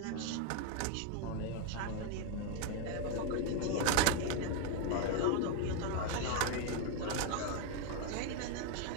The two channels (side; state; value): both; different; correlation 0.01